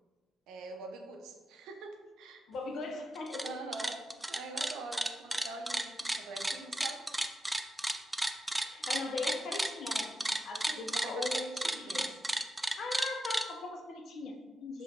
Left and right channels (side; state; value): both; normal; correlation 0.88